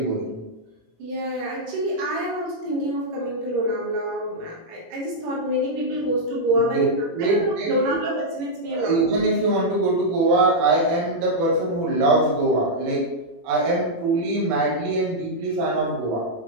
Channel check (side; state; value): left; late; 18 ms